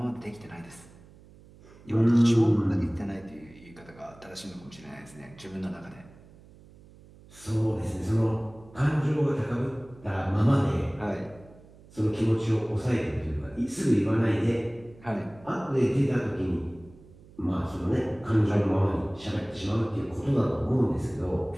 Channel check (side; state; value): right; noise; hum, 23 dB below the sound